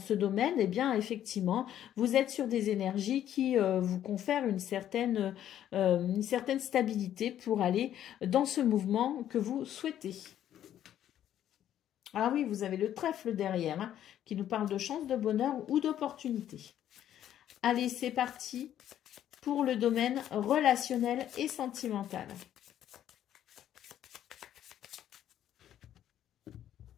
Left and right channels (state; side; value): quieter; right; 11.1 dB